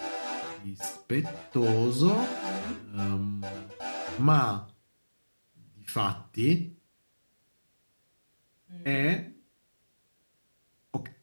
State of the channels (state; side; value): inverted; both; correlation -1.00